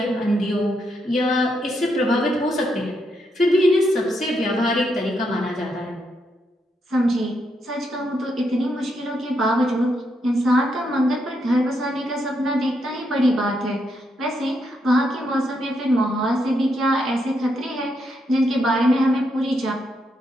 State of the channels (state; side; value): normal; both; correlation 0.79